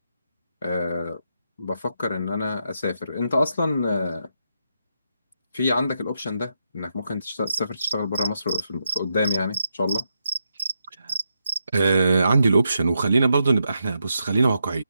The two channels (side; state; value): both; inverted; correlation -0.82